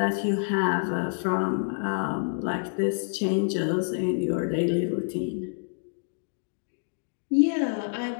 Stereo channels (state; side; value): silent; right; digital silence